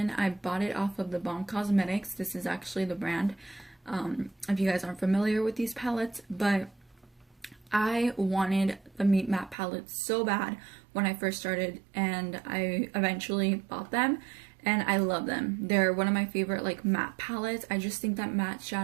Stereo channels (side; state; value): left; drops out; at 9.6 s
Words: I bought it off of the Balm Cosmetics. This is actually the brand, if you guys aren't familiar with these palettes, but I wanted the Me Matte palette so bad when I first started, and I eventually bought them. And I love them. They're one of my favorite like matte palettes. I just think that matte